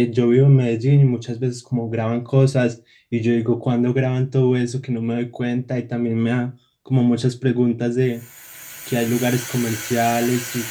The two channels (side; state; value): both; identical; correlation 1.00